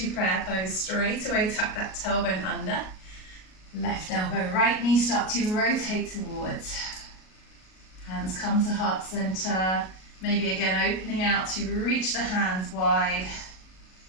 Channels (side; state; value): right; late; 38 ms